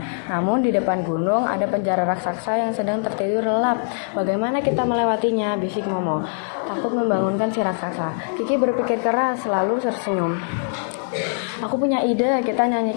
Namun di depan gunung ada penjara raksasa yang sedang tertidur lelap. Bagaimana kita melewatinya? Bisik Momo, takut membangunkan si raksasa. Kiki berpikir keras, selalu tersenyum. Aku punya ide, kita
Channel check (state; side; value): silent; right; digital silence